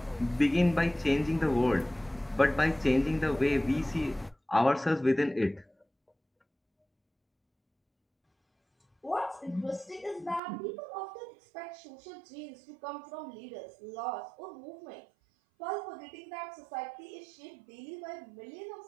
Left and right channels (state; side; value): drops out; left; at 10.4 s